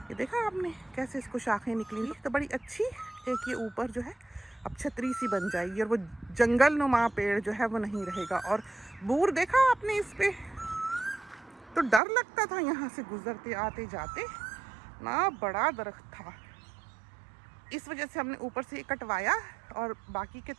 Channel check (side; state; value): left; drops out; at 12.0 s